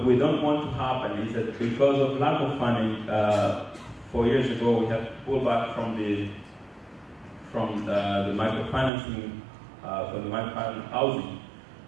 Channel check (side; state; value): left; drops out; at 8.9 s